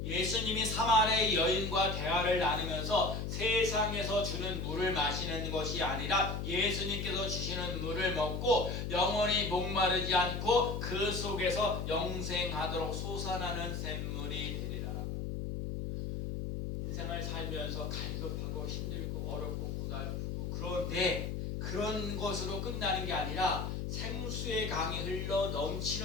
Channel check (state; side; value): noise; left; hum, 3 dB below the sound